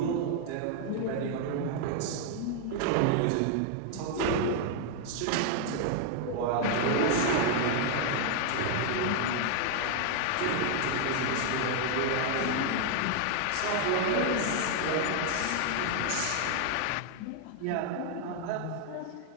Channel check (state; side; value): different; both; correlation 0.00